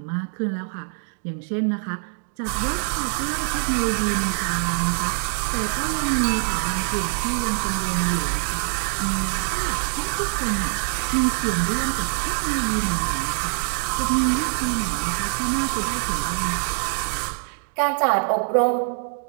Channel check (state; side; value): silent; left; 63 dB below the other